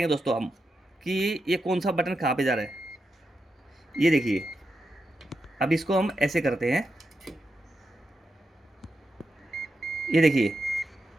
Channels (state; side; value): normal; both; correlation 0.87